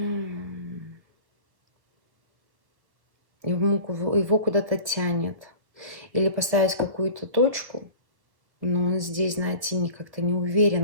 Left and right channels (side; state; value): left; late; 1.2 ms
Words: Его куда-то тянет. Или поставить какую-то точку, но он здесь, знаете, как-то не